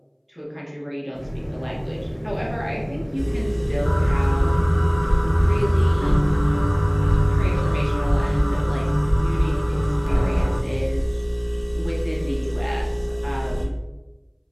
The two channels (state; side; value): identical; both; correlation 1.00